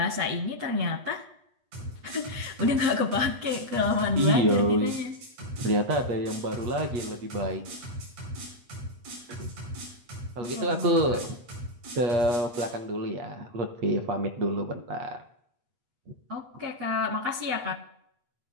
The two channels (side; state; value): left; late; 8.3 ms